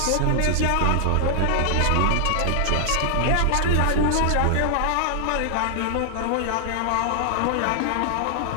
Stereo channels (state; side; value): different; both; correlation 0.00